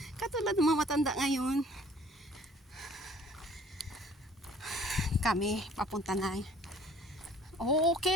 Katulad ng mga matanda ngayon. Kami, papunta na. Okay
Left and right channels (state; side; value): normal; both; correlation 0.53